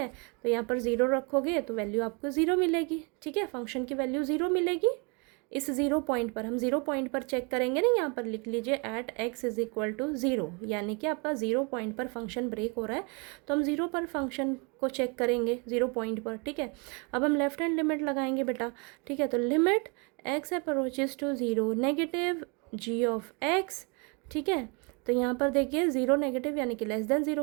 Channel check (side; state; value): left; quieter; 32.4 dB